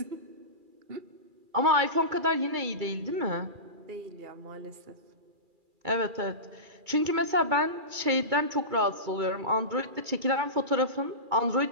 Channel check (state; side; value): late; left; 2.2 ms